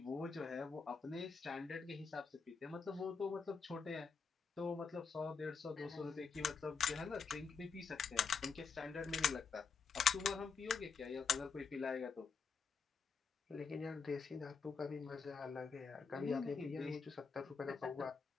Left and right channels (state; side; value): quieter; right; 5.4 dB